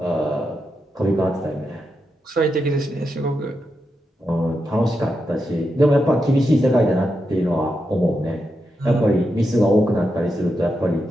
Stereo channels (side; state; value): both; normal; correlation 0.86